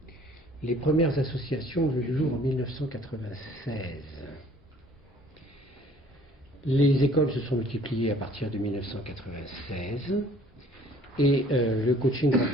Les premières associations ont vu le jour en 1996. Les écoles se sont multipliées à partir de 1996 et le coaching grand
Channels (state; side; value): normal; both; correlation 0.55